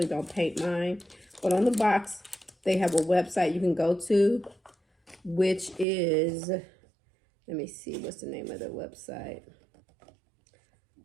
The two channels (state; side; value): drops out; left; at 5.9 s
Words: don't paint mine. But on the box, they have a website you can go to, which is, let me see, what's the name of the website?